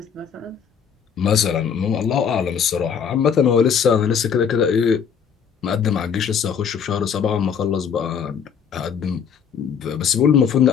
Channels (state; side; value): quieter; right; 7.2 dB